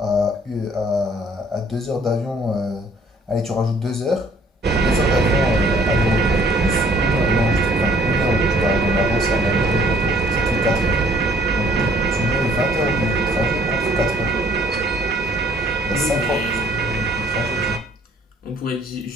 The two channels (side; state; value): both; normal; correlation 0.59